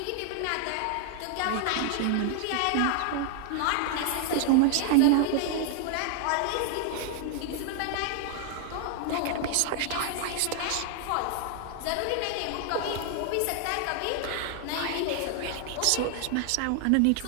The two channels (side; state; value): both; different; correlation 0.00